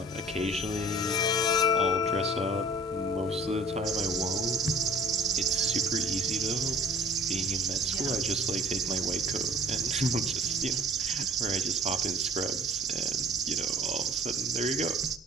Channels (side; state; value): both; normal; correlation 0.48